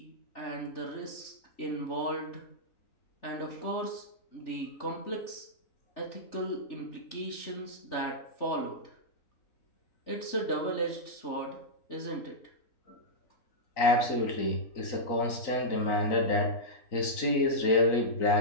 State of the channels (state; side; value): late; right; 3.9 ms